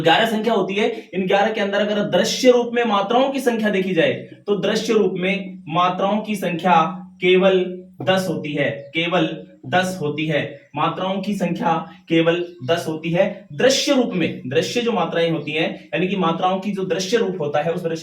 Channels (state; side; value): identical; both; correlation 1.00